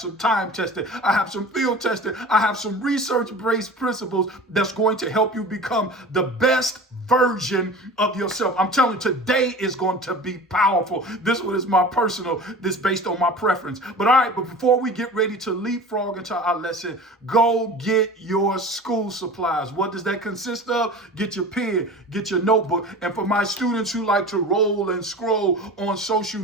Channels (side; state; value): both; normal; correlation 0.37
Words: time tested, I have some field tested, I have some research-based principles that's going to help you become the best version of yourself. I'm telling you, today is going to be powerful. This one is my personal, this based on my preference. But all right, but before we get ready to leapfrog into our lesson, go get your school supplies. What does that consist of? Get your pen, get your notebook. And for my students who like to roll and scroll on social